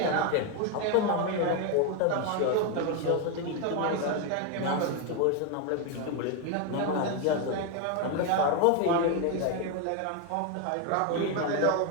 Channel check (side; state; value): both; different; correlation 0.01